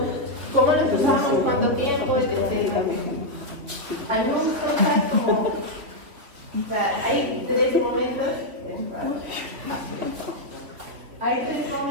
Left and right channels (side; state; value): left; late; 3.8 ms